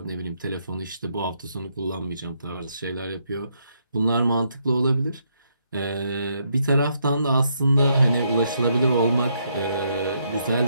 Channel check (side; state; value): both; inverted; correlation -0.75